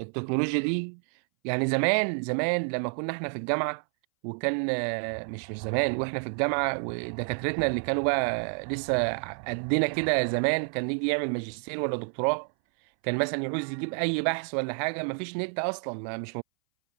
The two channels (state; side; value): silent; left; 59 dB below the other